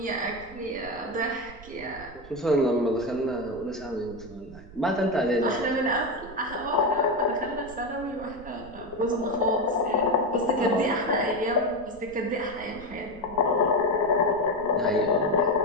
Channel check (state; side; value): noise; right; rumble, 19 dB below the sound